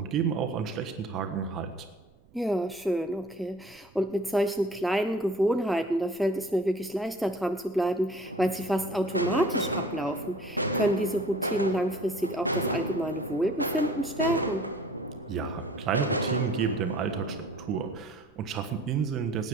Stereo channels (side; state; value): right; noise; rumble, 29 dB below the sound